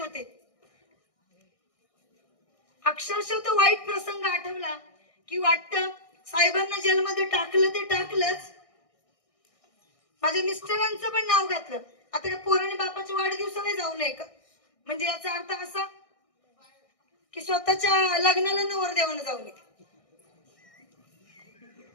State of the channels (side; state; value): right; late; 1.6 ms